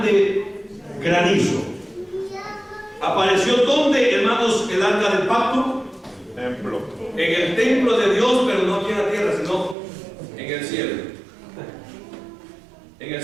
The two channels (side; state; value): left; drops out; at 9.8 s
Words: granizo. ¿Apareció dónde, hermanos, el arca del pacto? Templo. En el templo de Dios, pero no aquí en la tierra, sino en el cielo. En el